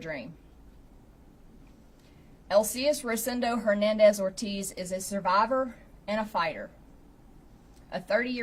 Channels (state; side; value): identical; both; correlation 1.00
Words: Elcias Rosendo Hernandez Ortiz is a survivor and a fighter. A